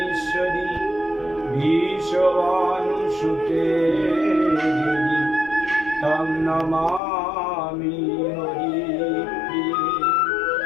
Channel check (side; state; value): right; drops out; at 7.0 s